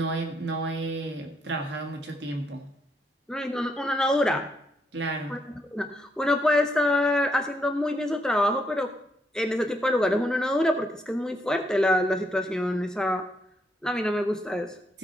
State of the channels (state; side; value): normal; both; correlation 0.76